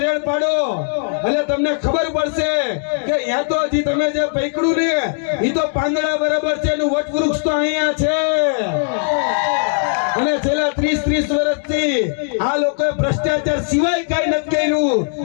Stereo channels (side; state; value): right; silent; 67 dB below the other